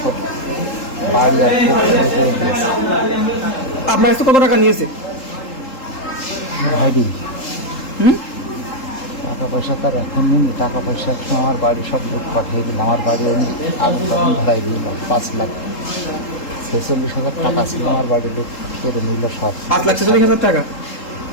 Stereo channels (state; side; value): late; right; 3.8 ms